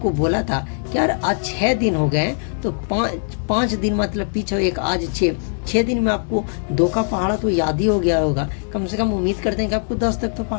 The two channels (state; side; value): silent; right; 65 dB below the other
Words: बोला था कि यार आज 6 दिन हो गए, तो 5 दिन मतलब पीछे एक, आज 6 दिन में आपको 2 का पहाड़ा तो याद ही हो गया होगा। कम से कम उम्मीद करते हैं कि आपको 10 तक तो